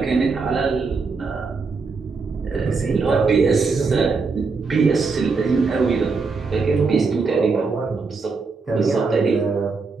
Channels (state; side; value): quieter; left; 4.4 dB